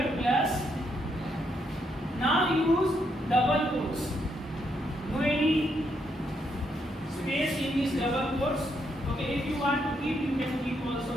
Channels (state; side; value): normal; both; correlation 0.77